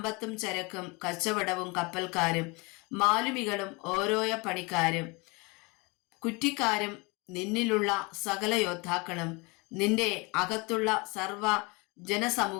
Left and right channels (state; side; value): quieter; right; 27.3 dB